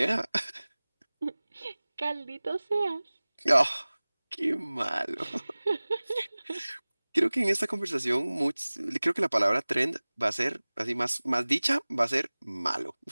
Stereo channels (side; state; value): both; inverted; correlation -1.00